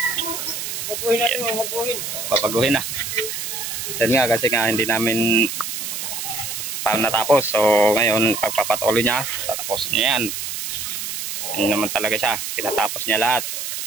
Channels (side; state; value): right; noise; hiss, 5 dB below the sound